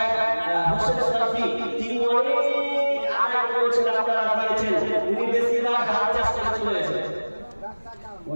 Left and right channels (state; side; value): inverted; both; correlation -1.00